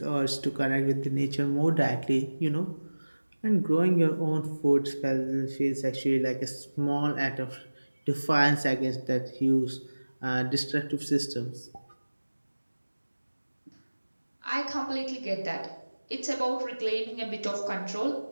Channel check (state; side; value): inverted; both; correlation -1.00